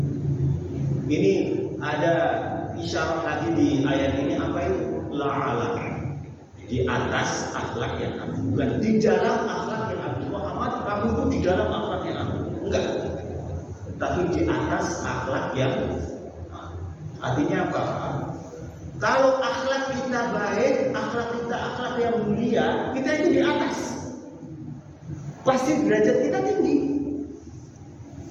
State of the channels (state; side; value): identical; both; correlation 1.00